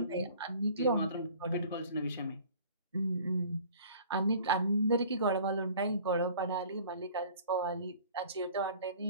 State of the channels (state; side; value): inverted; both; correlation -0.49